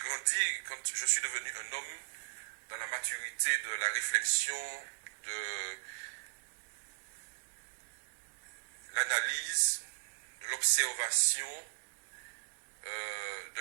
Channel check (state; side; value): silent; left; digital silence